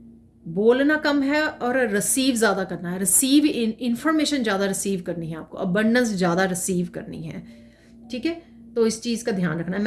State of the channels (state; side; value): identical; both; correlation 1.00